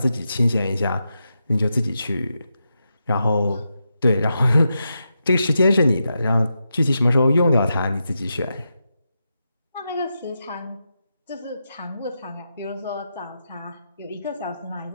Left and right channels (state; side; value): inverted; both; correlation -0.87